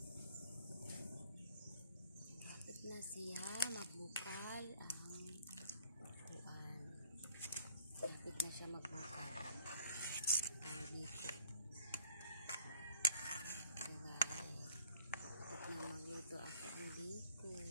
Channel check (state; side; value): inverted; both; correlation -0.56